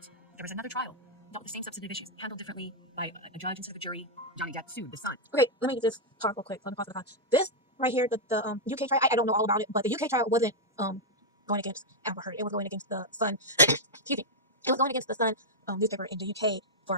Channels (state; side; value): normal; both; correlation -0.04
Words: There was another trial, dealt with the same substantive issues, handled differently by a judge instead of a jury. Johnny Depp sued the Sun. Okay, let me just talk real quick. Let me pause the con. This right here, the UK trial, I don't know all about it, but the UK trial wasn't going against Amber Heard. It was going against the Sun. Excuse me. It was going against the Sun newspaper in the UK